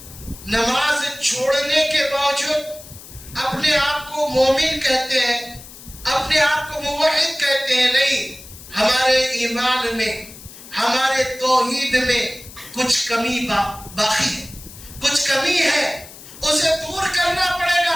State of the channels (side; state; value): left; noise; hiss, 17 dB below the sound